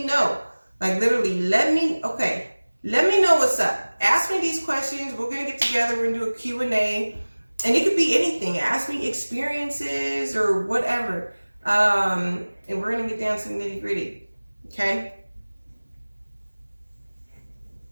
know. Like literally, let me know what's up. Ask me these questions. We're going to get together. We're going to do a Q&A. And it could be anything. Ask me experiences or whatever. And we're going to get down to the nitty gritty. Okay?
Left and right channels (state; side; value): inverted; both; correlation -1.00